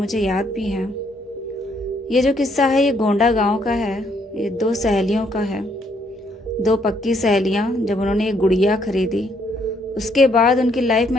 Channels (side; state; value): both; normal; correlation 0.70